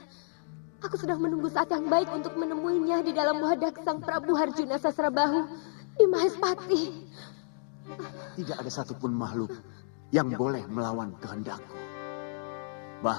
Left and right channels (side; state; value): right; silent; digital silence